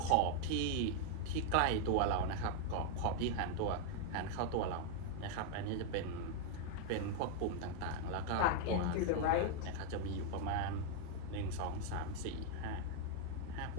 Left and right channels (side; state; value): both; different; correlation 0.00